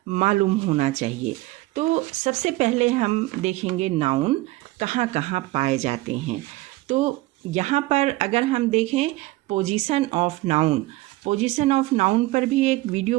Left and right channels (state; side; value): quieter; left; 19.3 dB